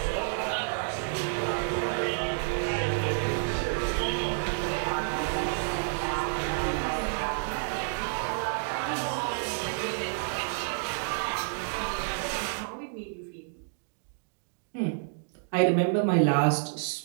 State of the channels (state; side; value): silent; left; digital silence